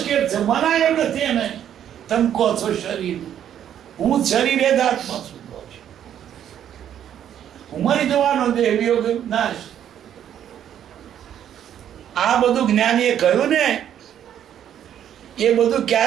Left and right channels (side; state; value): left; quieter; 10.0 dB